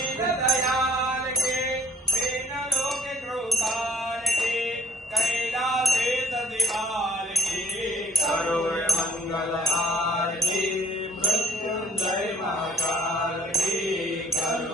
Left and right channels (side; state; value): both; normal; correlation 0.53